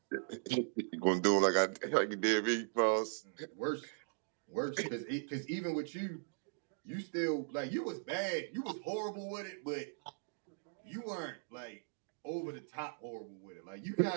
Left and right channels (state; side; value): silent; left; digital silence